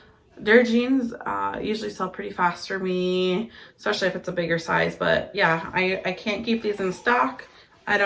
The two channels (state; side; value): identical; both; correlation 1.00